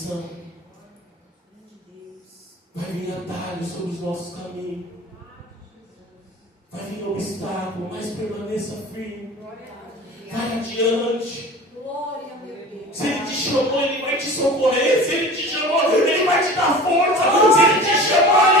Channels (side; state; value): both; normal; correlation 0.38